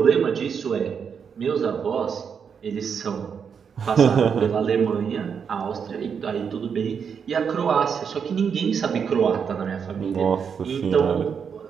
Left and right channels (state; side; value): quieter; left; 6.8 dB